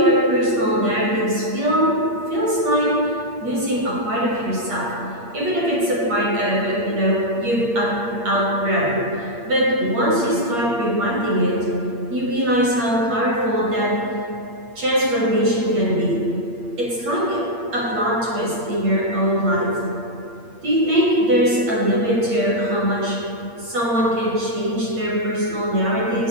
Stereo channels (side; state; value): left; late; 8.6 ms